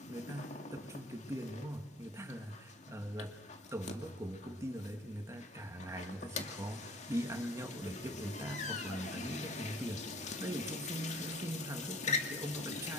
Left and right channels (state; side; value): normal; both; correlation 0.51